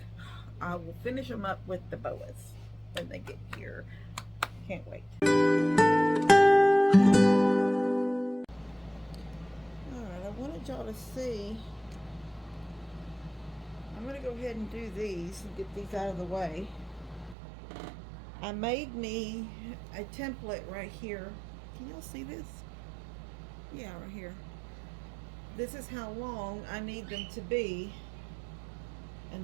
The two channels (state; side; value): drops out; left; at 17.4 s